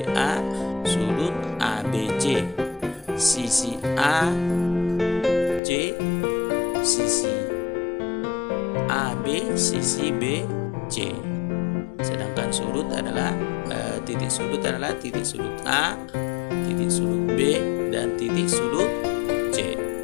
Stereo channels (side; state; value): right; drops out; at 5.6 s